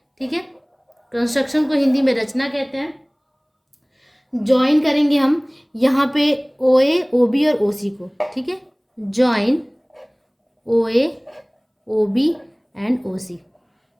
ठीक है, कंस्ट्रक्शन को हिंदी में रचना कहते हैं. ज्वाइन करेंगे हम यहाँ पे ओ ए ओ बी और ओ सी को. ठीक है, join O A O B and O C.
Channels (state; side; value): identical; both; correlation 1.00